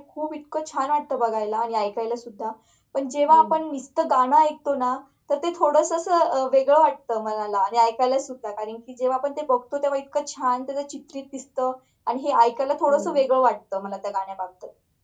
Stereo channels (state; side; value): identical; both; correlation 1.00